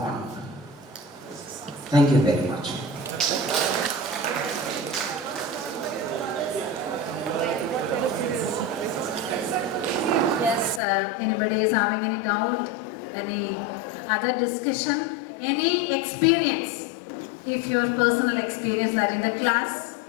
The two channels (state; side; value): drops out; right; at 10.8 s